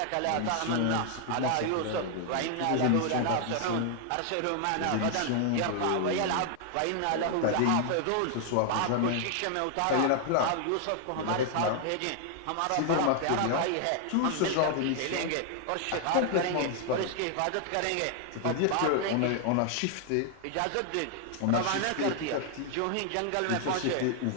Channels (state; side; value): different; both; correlation 0.00